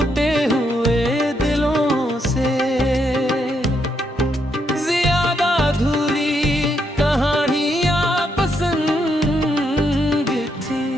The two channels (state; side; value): normal; both; correlation 0.78